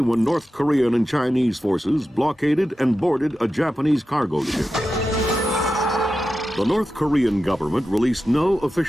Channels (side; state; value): both; normal; correlation 0.91